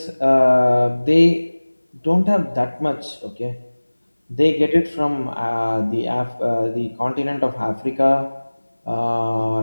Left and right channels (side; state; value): both; inverted; correlation -1.00